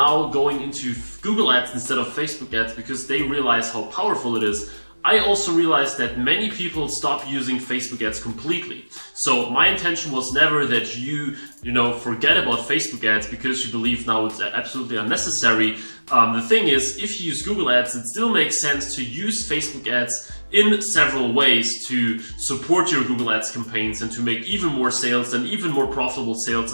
going into Google ads instead of Facebook ads because they realize how powerful it is, I also realized that many people stop using Facebook ads completely. So my intention was never that you forget about Facebook ads because you believe now it's absolutely unnecessary. The thing is, if you use Google ads, it still makes sense to use Facebook ads in several ways to support your Google ads campaigns and to make even more sales and even more profitable sales,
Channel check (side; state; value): both; inverted; correlation -1.00